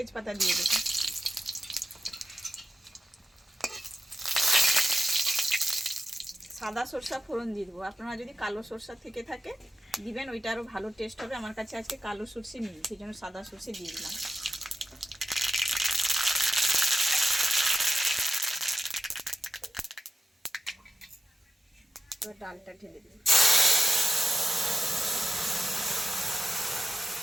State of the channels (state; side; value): normal; both; correlation 0.92